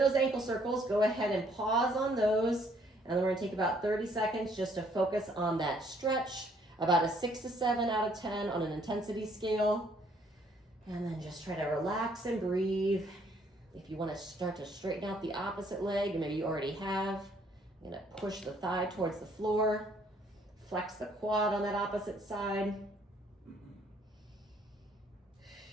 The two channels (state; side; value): normal; both; correlation 0.65